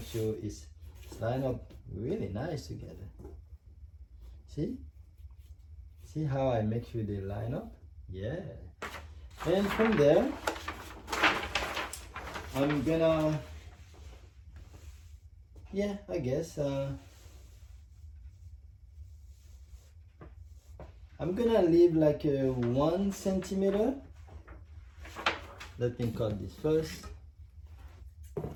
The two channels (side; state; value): both; identical; correlation 1.00